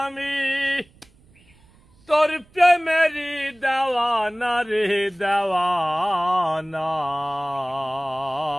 আমি তোর প্রেমেরই দেওয়ানা রে দেওয়ানা।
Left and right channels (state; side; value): noise; right; rumble, 30 dB below the sound